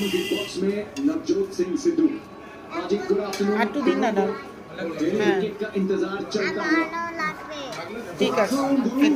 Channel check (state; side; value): identical; both; correlation 1.00